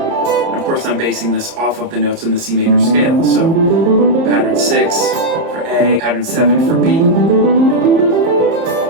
of course I'm basing this off of the notes in the C major scale. So pattern 6 for A, pattern 7 for B,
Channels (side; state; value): left; late; 30 ms